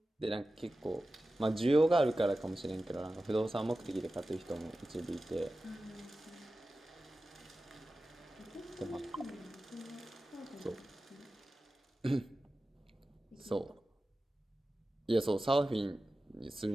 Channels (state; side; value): normal; both; correlation 0.95